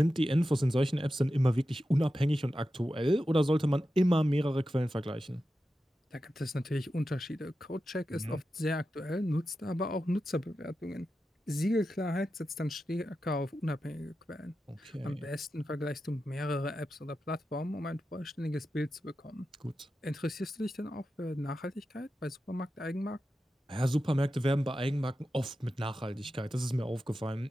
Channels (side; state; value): both; normal; correlation 0.91